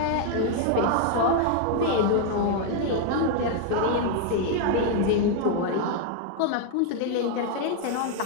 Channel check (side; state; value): both; different; correlation 0.00